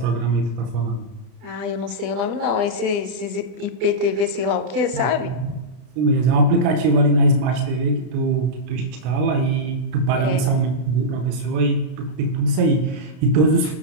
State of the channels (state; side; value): late; left; 33 ms